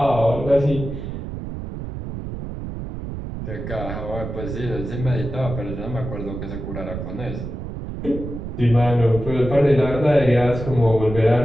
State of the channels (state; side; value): noise; right; rumble, 7 dB below the sound